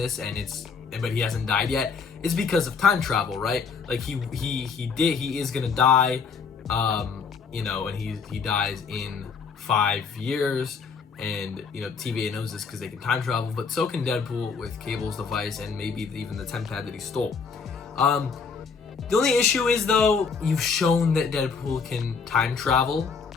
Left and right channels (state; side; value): quieter; right; 5.5 dB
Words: but he hasn't died yet, is because of time travel, right? Like he is gonna die, you know, and he dies in 5 years, and you know TVA knows this because they can time travel, but so can Deadpool with Cable's device and maybe even the temp pad that he stole. The only issue is, though, you've shown that Deadpool can time travel,